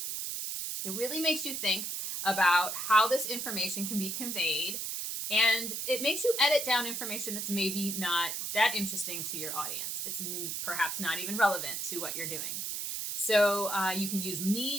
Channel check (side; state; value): right; noise; hiss, 3 dB below the sound